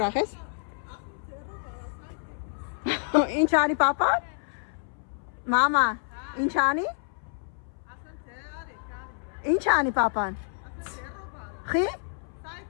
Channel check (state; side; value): silent; right; 59 dB below the other